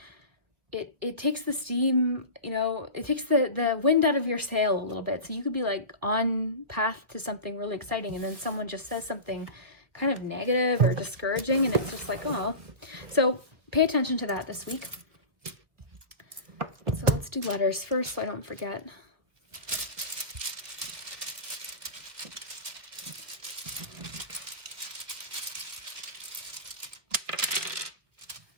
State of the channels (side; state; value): left; late; 1.6 ms